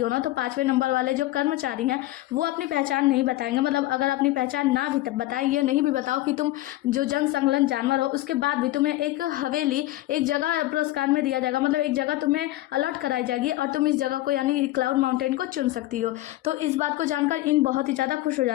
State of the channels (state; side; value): quieter; right; 16.7 dB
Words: ना तो 5वें नंबर वाले जो कर्मचारी हैं वो अपनी पहचान नहीं बताएंगे, मतलब अगर अपनी पहचान ना भी बताएं, ये नहीं भी बताओ कि तुम जो जन संलग्न जानवर हो, उसके बाद भी तुम्हें एक हवेली, एक जगह पुरस्कार में दिया जाएगा, मतलब एक जगह तुम्हें अलॉट कराई जाएगी और तुम इस जगह को यानी क्लाउड माउंटेन को चुन सकती हो। तो इस बात को जानकर इन बहुत ही ज़्यादा खुश हो